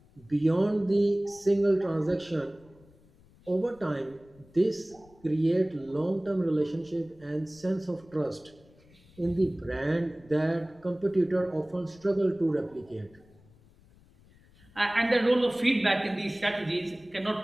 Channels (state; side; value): noise; left; rumble, 27 dB below the sound